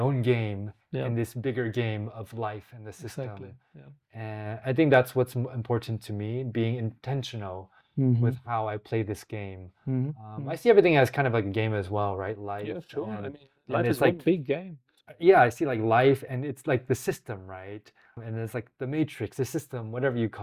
game Yeah. in this bigger game of life and the Exactly. system. Yeah. And I think that's what's important to me, being intentional with Mhm. how I play this game. Mhm. I Mhm. see everything as kind of like a game as well, right? Yeah, Life sure. I mean, and life is it's one like, big game. yeah, I see like life and it's like the system, right? And it's like the matrix, the system, whatever you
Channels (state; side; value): identical; both; correlation 1.00